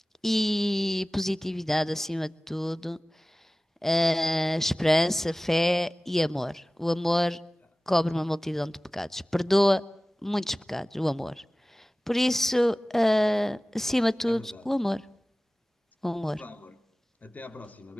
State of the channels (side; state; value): both; normal; correlation 0.98